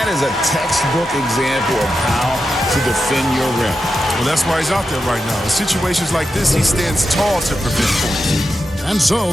is a textbook example of how to defend your rim. Well, that's why he's out there right now. In situations like this, he stands tall to prevent points. And so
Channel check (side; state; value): both; normal; correlation 0.89